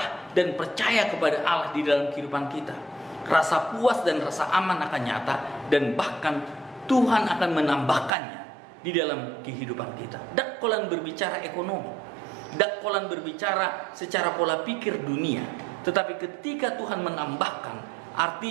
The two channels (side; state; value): left; drops out; at 8.1 s